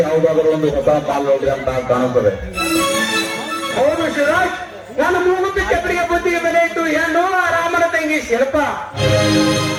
ಯಾವುದಾದರೂ ಒಂದು ಹೊಸ ಪಾಲು ನೋಡಿದೆ ಅಂತ ಕಾಣುತ್ತದೆ. ಹೌದು ಶಿವರಾಜ್, ನಾನು ಮೂಗುತ್ತಿ ಕೆಬ್ಬರಿಗೆ ಬುದ್ಧಿಗೆ ಬೆಲೆ ಇಟ್ಟು ಹೆಣ್ಣು ರಾಮನ ತಂಗಿ ಶಿಲ್ಪ.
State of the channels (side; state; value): both; identical; correlation 1.00